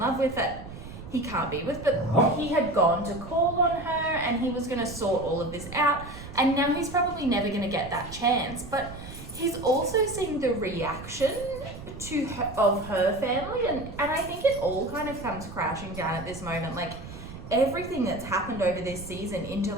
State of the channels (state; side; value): noise; right; rumble, 13 dB below the sound